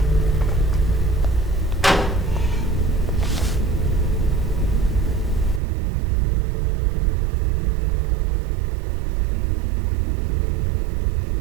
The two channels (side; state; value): left; drops out; at 5.6 s